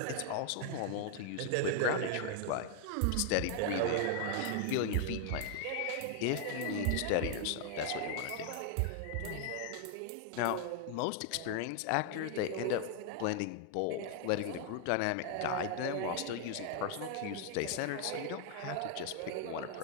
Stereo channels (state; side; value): different; both; correlation 0.00